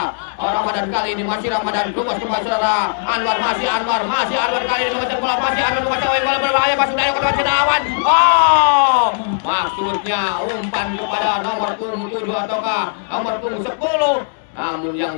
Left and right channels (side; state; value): right; silent; digital silence